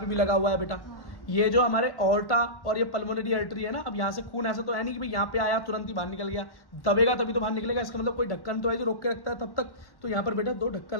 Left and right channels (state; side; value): late; right; 1.1 ms